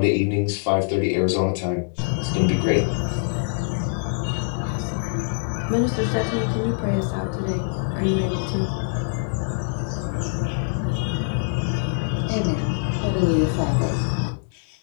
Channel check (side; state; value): right; silent; digital silence